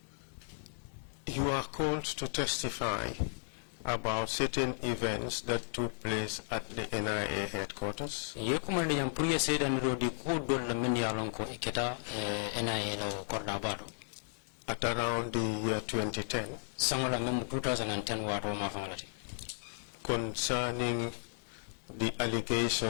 You are called to testify about certain events that took place at the NIA headquarters. At around the year 2010. Concerning the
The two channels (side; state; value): right; silent; digital silence